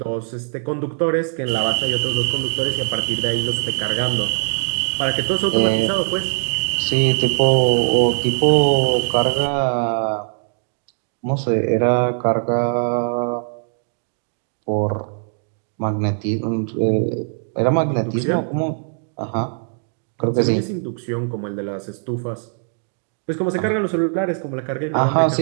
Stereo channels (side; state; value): left; silent; digital silence